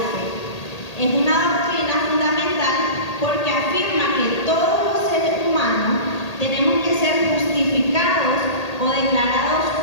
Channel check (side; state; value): right; late; 1.8 ms